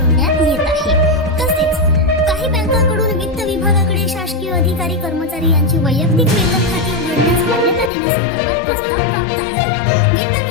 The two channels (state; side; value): drops out; right; at 7.9 s